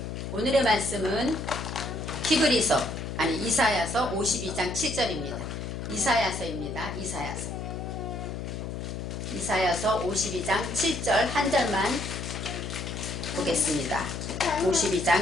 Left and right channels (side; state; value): left; noise; hum, 6 dB below the sound